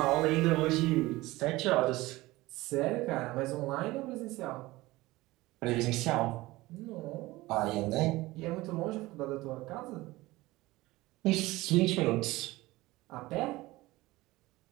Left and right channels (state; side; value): quieter; left; 19.4 dB